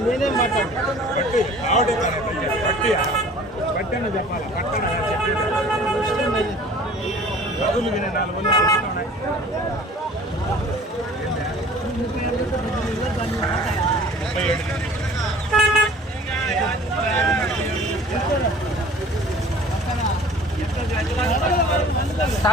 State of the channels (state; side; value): normal; both; correlation 0.48